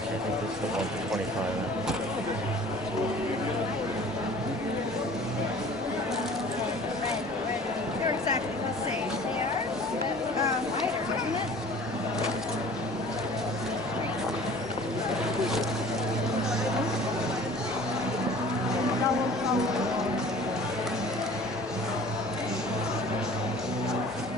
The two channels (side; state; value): both; normal; correlation 0.46